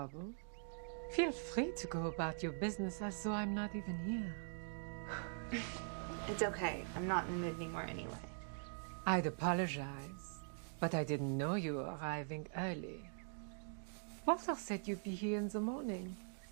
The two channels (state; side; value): silent; left; digital silence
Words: Feel free to go about your business as though I'm not even here. It's okay. I'm not in the mood anymore anyway. I'd apologize, but I didn't know you were arriving early. Walter said you'd be here in the morning.